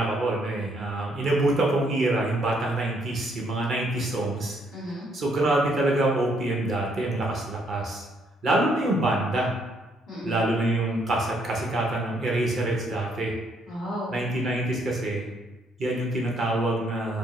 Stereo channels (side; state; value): both; normal; correlation 0.70